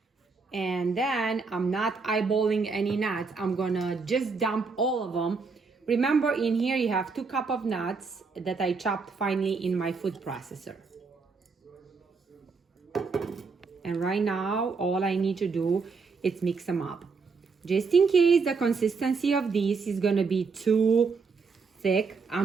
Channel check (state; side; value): quieter; left; 4.7 dB